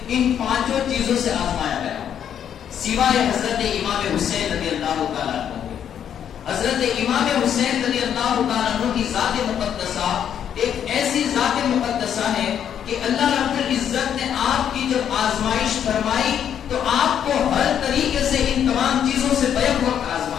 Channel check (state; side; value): quieter; right; 9.1 dB